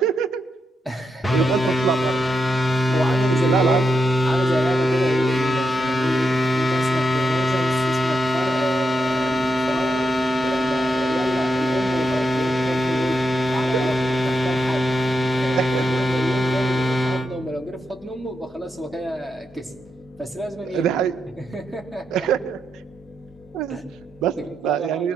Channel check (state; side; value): normal; both; correlation 0.84